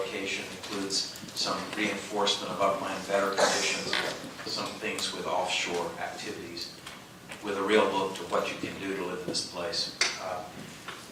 includes some reinforcement of upland better conditions, some things with offshore activities, with a real look to what you can do to live in this place.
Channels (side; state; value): both; identical; correlation 1.00